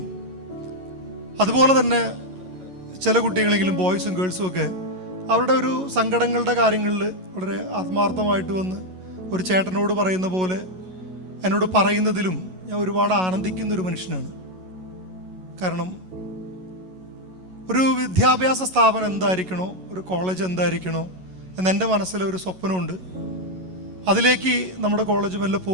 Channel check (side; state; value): left; late; 11 ms